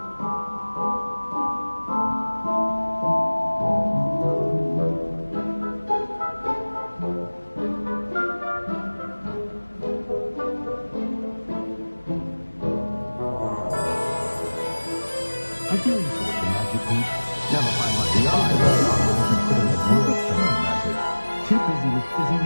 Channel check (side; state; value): both; inverted; correlation -1.00